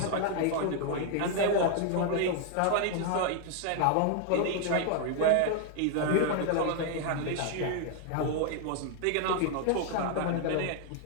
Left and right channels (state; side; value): different; both; correlation 0.00